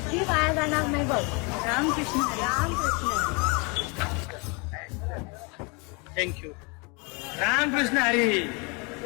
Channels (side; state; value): right; quieter; 31.0 dB